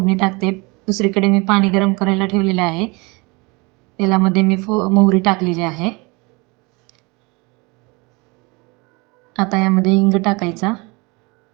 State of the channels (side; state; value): left; quieter; 27.0 dB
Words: टाकते. दुसरीकडे मी पाणी गरम करायला ठेवलेले आहे. तेलामध्ये मी मोहरी टाकलेली आहे. आता यामध्ये हिंग टाकायचा,